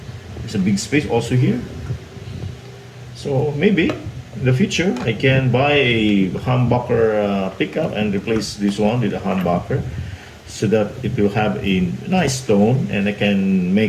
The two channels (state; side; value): identical; both; correlation 1.00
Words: There's a big space also here. So maybe in the future, I can buy a humbucker pickup and replace this one with a humbucker so that it will have a nice tone and I can